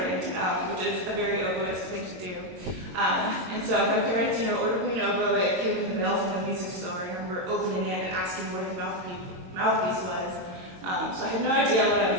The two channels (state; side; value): late; left; 22 ms